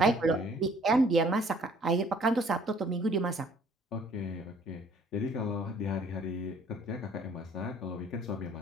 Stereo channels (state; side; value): normal; both; correlation 0.58